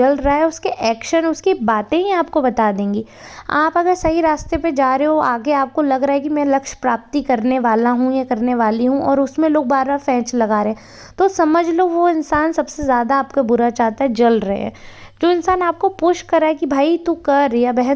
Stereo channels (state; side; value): identical; both; correlation 1.00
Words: रहा है उसके एक्शन, उसकी बातें ही आपको बता देंगी। आप अगर सही रास्ते पे जा रहे हो, आगे आपको लग रहा है कि मैं लक्ष्य प्राप्ति करने वाला हूँ या करने वाली हूँ, और उसमें लोग बार बार फेंच लगा रहे हैं, तो समझ लो वो इंसान सबसे ज़्यादा आपका बुरा चाहता है, जल रहे हैं। जो इंसान आपको पुश कर रहा है कि भाई तू कर, या